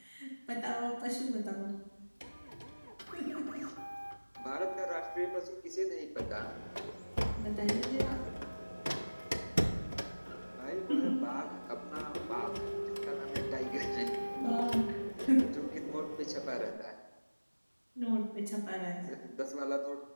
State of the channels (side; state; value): both; inverted; correlation -1.00